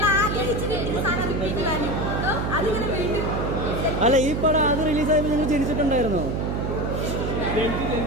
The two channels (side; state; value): right; noise; hum, 1 dB below the sound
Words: ആഗ്രഹിച്ച് കിട്ടിയ സാധനം റിപ്പീറ്റ് വാല്യൂ അതിങ്ങനെ വീണ്ടും. അല്ല ഈ പടം അത് റിലീസായപ്പോൾ നിങ്ങൾ ജനിച്ചിട്ടുണ്ടായിരുന്നോ?